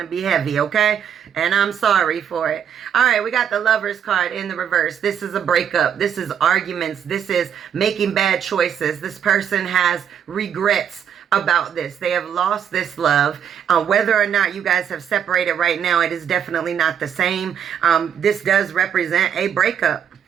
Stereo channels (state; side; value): quieter; left; 8.6 dB